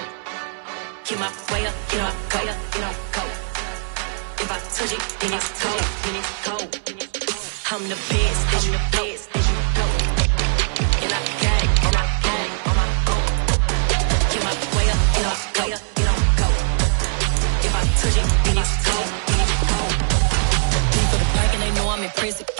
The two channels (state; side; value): silent; left; 65 dB below the other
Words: Get my way up, get my way up, get on go. If I touch it, then it's cold, then it's cold. I'm the best, and the best, and I got it, and I got it on my own. Get my way up, get my way up, get on go. If I touch it, then it's cold, then it's cold. Leave for the park and they know I'm impressive.